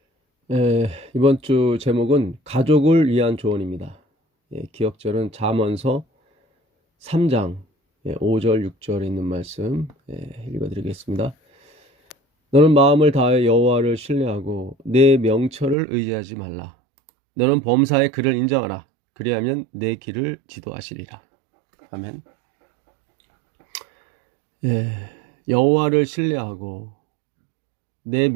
이번 주 제목은 가족을 위한 조언입니다. 기억절은 잠언서 3장 5절 6절에 있는 말씀 읽어드리겠습니다. 너는 마음을 다하여 여호와를 신뢰하고 내 명철을 의지하지 말라. 너는 범사의 그를 인정하라. 그리하면 내 길을 지도하시리라. 아멘. 여호와를 신뢰하고 내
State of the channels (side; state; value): left; drops out; at 15.8 s